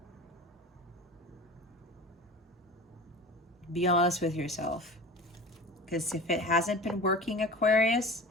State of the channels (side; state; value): both; normal; correlation 0.35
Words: Be honest with yourself. Because if it hasn't been working, Aquarius,